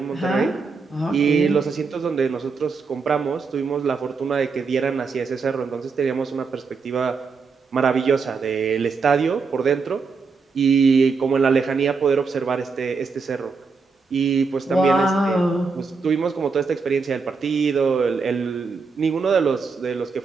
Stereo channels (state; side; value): quieter; left; 4.8 dB